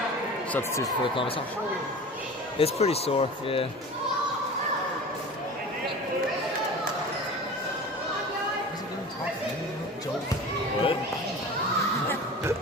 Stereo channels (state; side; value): normal; both; correlation 0.36